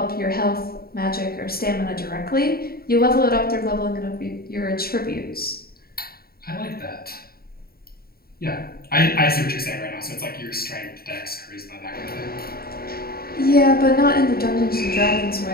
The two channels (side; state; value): right; late; 0.44 ms